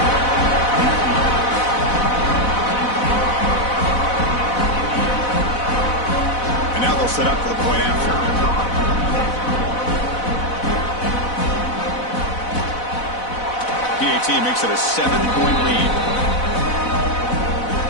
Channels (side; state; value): right; late; 4.0 ms